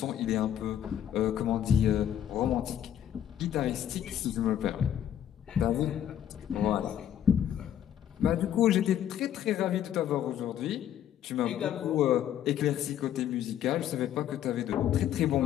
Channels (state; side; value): quieter; right; 10.5 dB